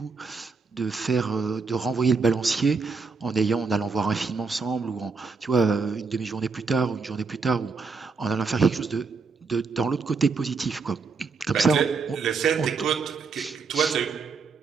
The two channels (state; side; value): quieter; left; 4.7 dB